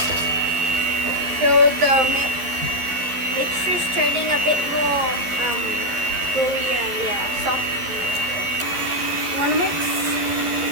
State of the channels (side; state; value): left; late; 11 ms